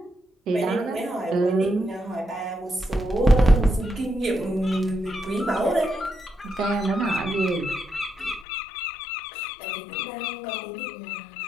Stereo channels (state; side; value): drops out; right; at 8.5 s